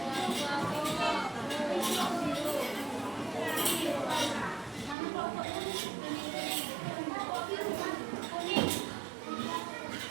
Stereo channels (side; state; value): left; drops out; at 5.0 s